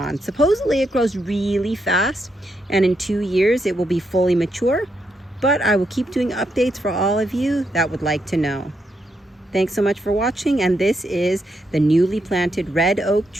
Supposedly it grows really fast, and in 2 years it will be fully mature, but I will keep doing updates for all of you that would like to know. Thanks so much for watching, and this is the newly planted red oak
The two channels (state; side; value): normal; both; correlation 0.80